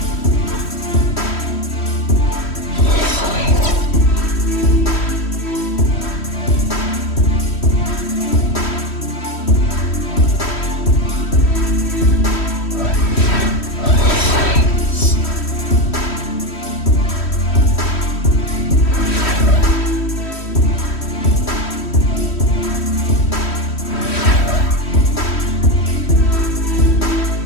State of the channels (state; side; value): late; right; 3.1 ms